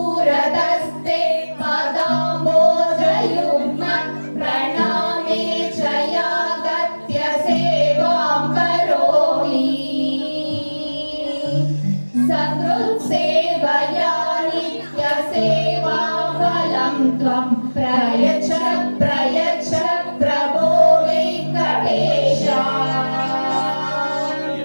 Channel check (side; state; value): both; inverted; correlation -1.00